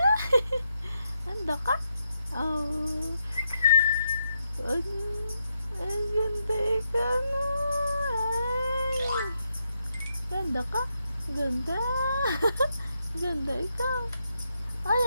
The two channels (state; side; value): inverted; both; correlation -0.82